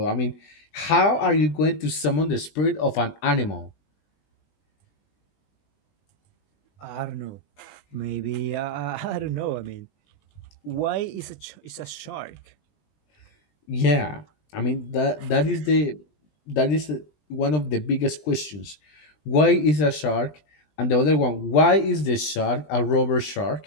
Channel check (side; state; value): right; late; 20 ms